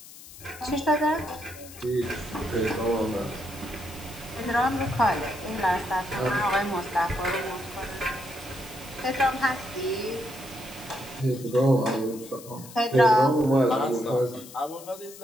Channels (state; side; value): noise; left; hiss, 17 dB below the sound